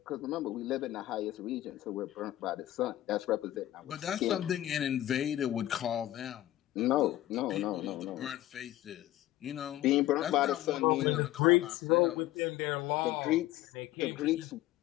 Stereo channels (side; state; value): right; quieter; 14.8 dB